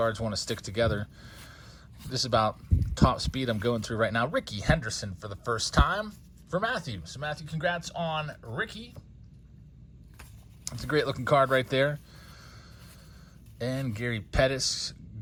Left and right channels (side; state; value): both; identical; correlation 1.00